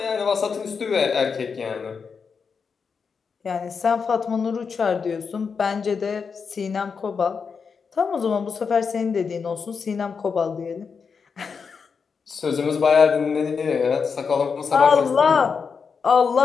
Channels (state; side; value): quieter; right; 5.7 dB